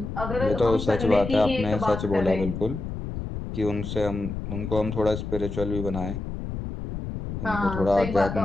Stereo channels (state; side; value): noise; left; rumble, 6 dB below the sound